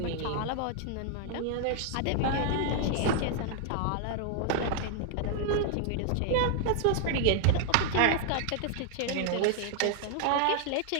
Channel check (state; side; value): different; both; correlation 0.00